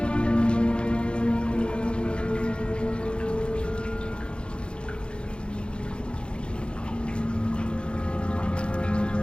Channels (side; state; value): right; late; 0.055 ms